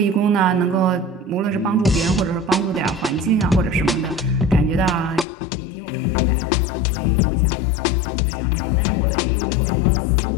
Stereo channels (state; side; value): drops out; right; at 5.2 s